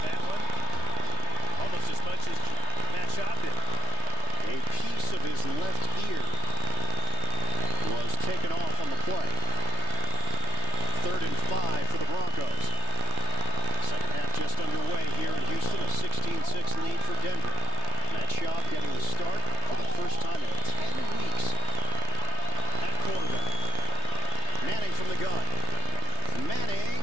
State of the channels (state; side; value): late; right; 3.3 ms